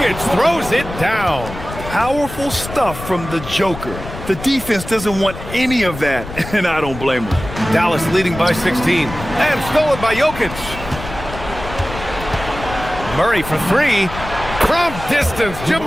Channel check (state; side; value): noise; left; rumble, 11 dB below the sound